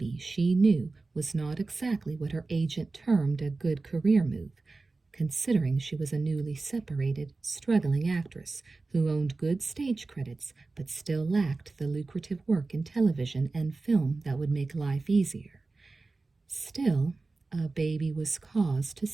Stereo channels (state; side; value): quieter; left; 3.6 dB